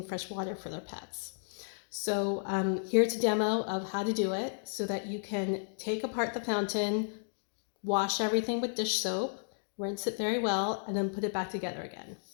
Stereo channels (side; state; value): right; silent; digital silence